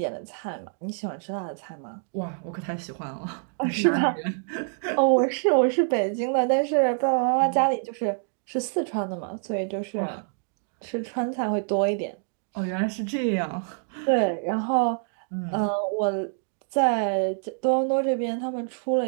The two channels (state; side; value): silent; left; digital silence